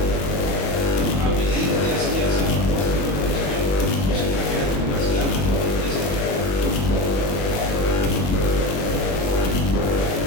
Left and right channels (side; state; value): right; late; 21 ms